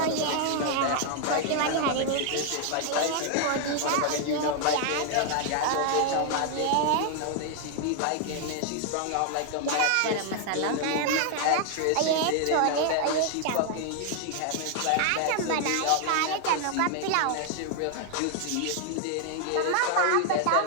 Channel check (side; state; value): both; different; correlation 0.00